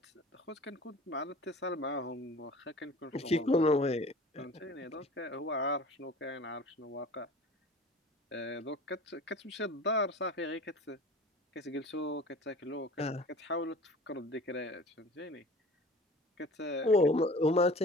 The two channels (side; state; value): both; normal; correlation 0.42